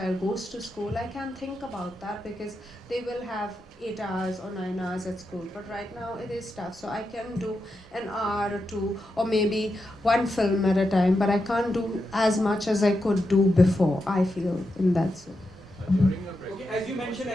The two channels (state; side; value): normal; both; correlation 0.87